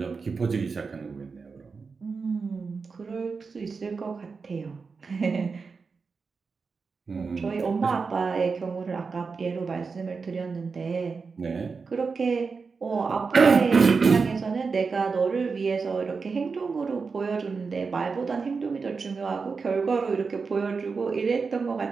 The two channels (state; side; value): quieter; left; 4.9 dB